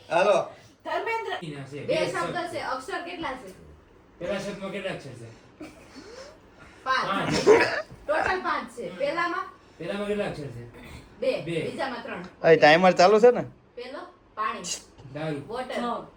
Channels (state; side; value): identical; both; correlation 1.00